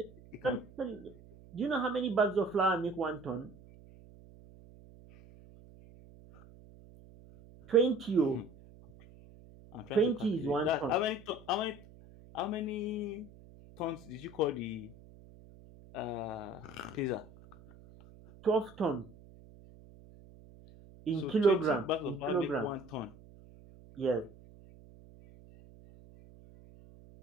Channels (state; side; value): noise; right; hum, 22 dB below the sound